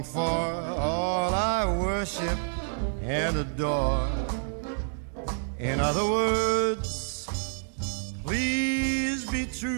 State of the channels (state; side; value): silent; left; digital silence